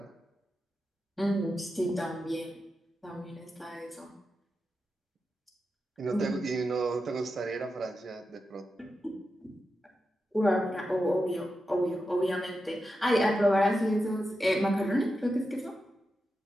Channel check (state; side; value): normal; both; correlation 0.89